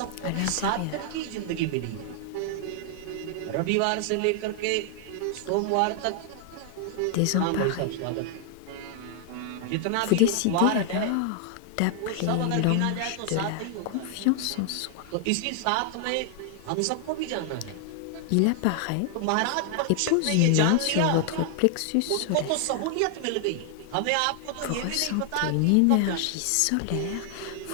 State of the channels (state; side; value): different; both; correlation 0.00